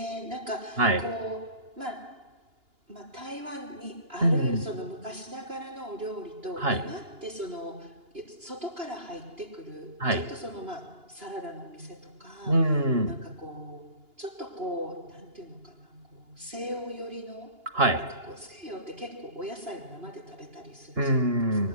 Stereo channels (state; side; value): late; left; 2.9 ms